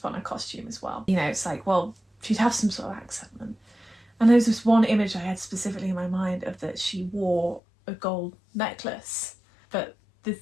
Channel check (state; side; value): drops out; right; at 7.6 s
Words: put on her costume as well, you know, it's like, well, she'd have some sort of accent. And there's this one image I had specifically in my mind of that she wore a gold necklace, but